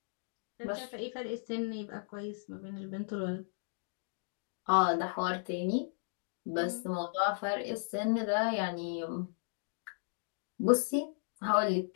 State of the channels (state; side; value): silent; right; digital silence